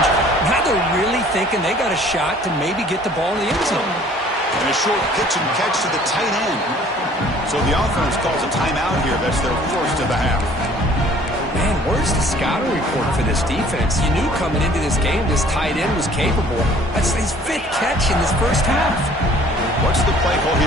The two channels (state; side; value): normal; both; correlation 0.54